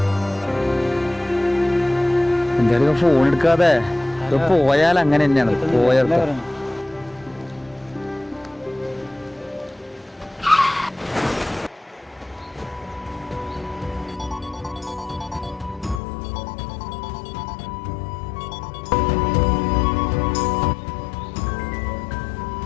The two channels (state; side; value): drops out; right; at 16.0 s